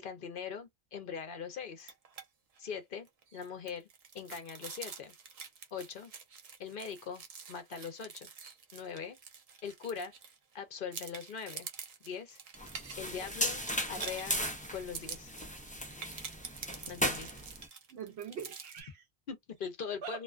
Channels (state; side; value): normal; both; correlation 0.05